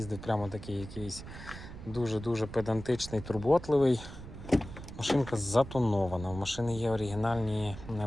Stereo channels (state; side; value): noise; right; rumble, 13 dB below the sound